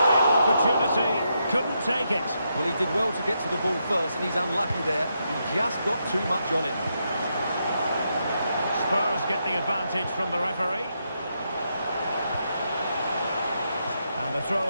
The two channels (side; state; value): both; inverted; correlation -0.81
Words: opportunity, couldn't take it. Well, he did well to get to the ball first, and he's unlucky there. He just got too much on it. Spurs get the advantage from the referee. And a